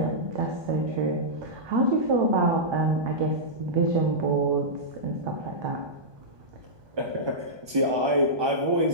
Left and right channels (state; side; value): late; left; 1.2 ms